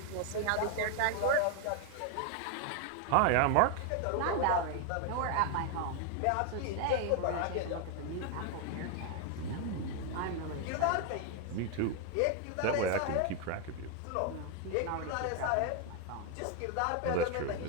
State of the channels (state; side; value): different; both; correlation 0.00